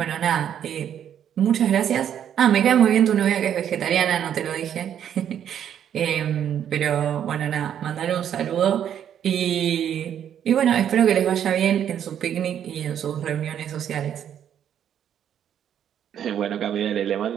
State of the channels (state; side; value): quieter; left; 9.5 dB